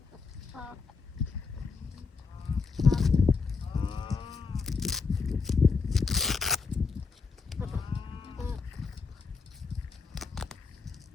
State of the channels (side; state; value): right; quieter; 4.8 dB